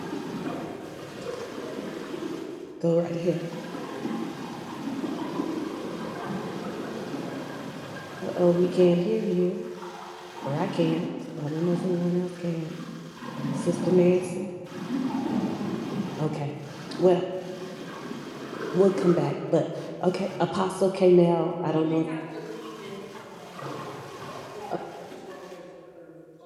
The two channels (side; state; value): both; identical; correlation 1.00